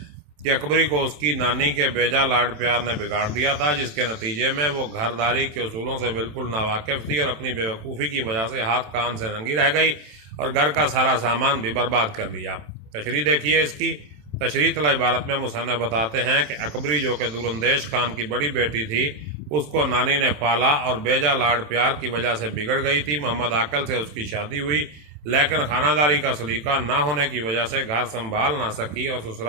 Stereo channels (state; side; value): late; left; 27 ms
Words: کہ اکبری کو اس کی نانی کے بیجا لاڈ پیار نے بگاڑ دیا تھا، جس کے نتیجے میں وہ گھرداری کے اصولوں سے بالکل ناواقف تھی اور اپنی بے وقوفی کی وجہ سے ہاتھ کان سے ننگی رہ گئی اور گھر کا سارا سامان بھی برباد کر لیا۔ تشریح دیکھیے اس کی۔ تشریح طلب عبارت میں مصنف بتاتے ہیں کہ اکبری جو کہ دوراندیش خان کی بڑی بیٹی تھی، اس کو نانی نے پالا اور بیجا لاڈ پیار کی وجہ سے بگڑ گئی تھی۔ محمد عاقل سے اس کی شادی ہوئی، لیکن خانہ داری کا سلیقہ نہ ہونے کی وجہ سے گھر سنبھال نہ سکی اور